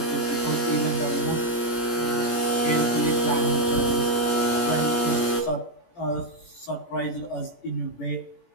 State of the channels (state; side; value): late; right; 17 ms